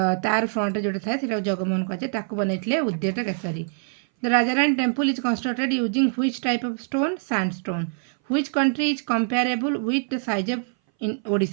ତାର ଫ୍ରଣ୍ଟ ଯୋଉଟା ଥାଏ ସେଟା ଜଗମୋହନ କୁହାଯାଏ. ତାକୁ ବନେଇଥିଲେ ଉଦ୍ୟଟ Keshari. The Rajarani temple is constructed using which type of stone? Sandstone. Which country is comparable with the size of in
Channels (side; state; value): left; silent; 60 dB below the other